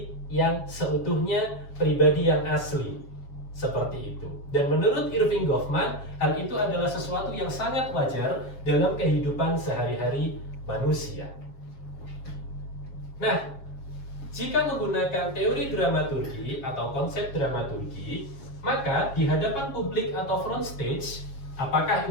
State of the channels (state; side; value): late; right; 7.3 ms